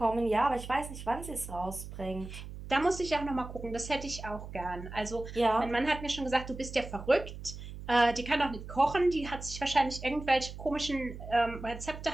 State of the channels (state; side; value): noise; right; hum, 11 dB below the sound